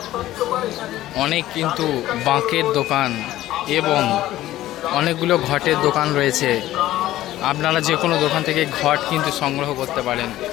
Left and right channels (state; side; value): quieter; right; 14.7 dB